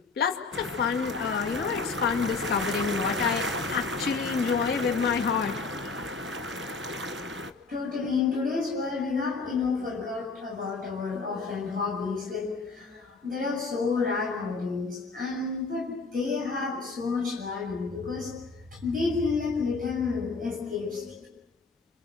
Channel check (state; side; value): quieter; right; 4.3 dB